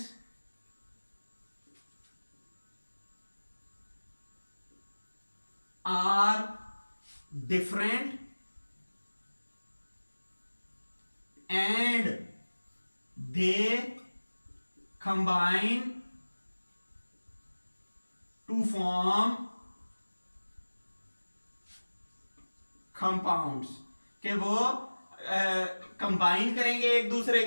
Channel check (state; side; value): inverted; both; correlation -1.00